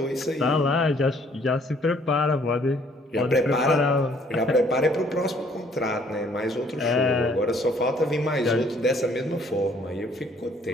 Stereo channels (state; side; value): normal; both; correlation 0.61